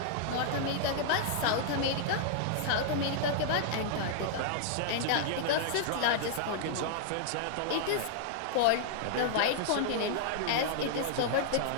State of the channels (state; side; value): different; both; correlation -0.01